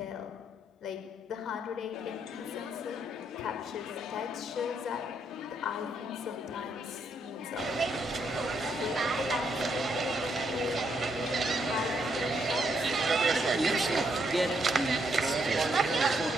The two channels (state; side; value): normal; both; correlation 0.75